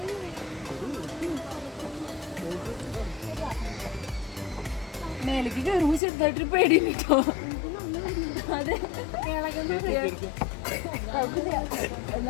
മേലേക്ക് കയറുമ്പോൾ ചെറുതായിട്ടൊരു പേടി കേട്ടോ. അതെ,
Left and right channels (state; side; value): drops out; right; at 6.0 s